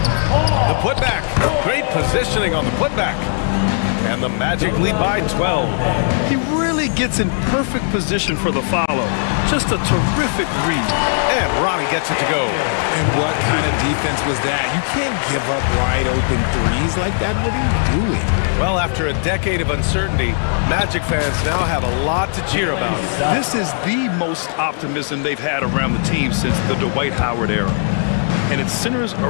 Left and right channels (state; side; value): silent; right; 67 dB below the other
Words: The putback. Great positioning on the putback. And the Magic lead by 12. He really gets in perfect position for the follow. Just a terrific read. And Ronnie gets it to go. And what kind of defense was that? You can't give up wide open threes like that. What are you doing? Well, after a decade of uncertainty, Magic fans now have a lot to cheer about. This is the most optimism they've had around the team since the Dwight Howard era. And it centers